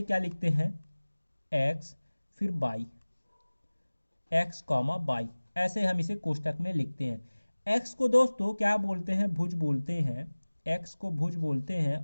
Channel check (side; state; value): both; inverted; correlation -1.00